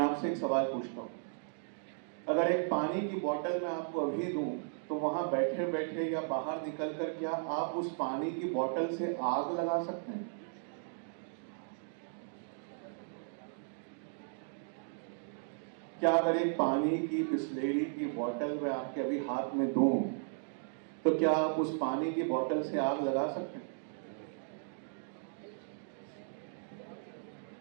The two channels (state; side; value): silent; left; digital silence